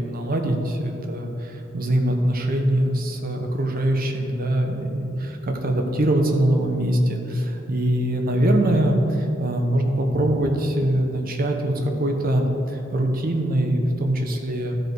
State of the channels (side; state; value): both; normal; correlation 0.80